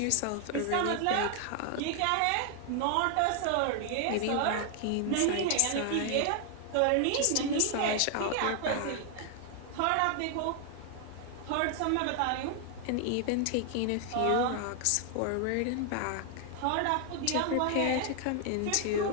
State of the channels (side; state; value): both; different; correlation 0.00